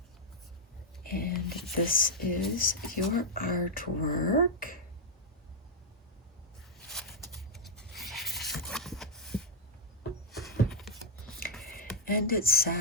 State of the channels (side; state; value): both; normal; correlation -0.04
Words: This is your artwork. And it